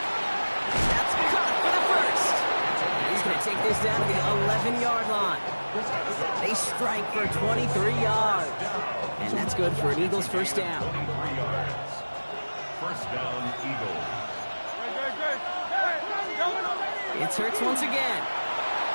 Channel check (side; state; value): both; inverted; correlation -1.00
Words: That's caught for the first. He's going to take this down to the 11-yard line. They strike for 23 yards. And that's good for an Eagles first down. 23 yards. First down, Eagles. It's Hurts once again.